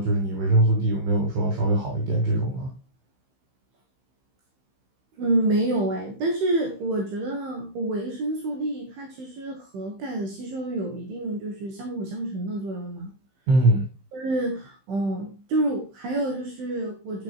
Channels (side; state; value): left; late; 15 ms